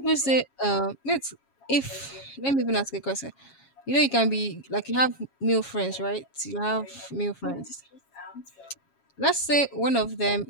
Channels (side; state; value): right; late; 7.3 ms